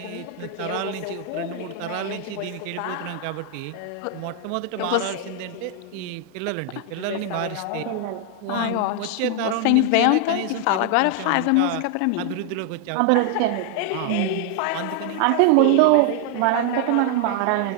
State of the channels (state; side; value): different; both; correlation 0.00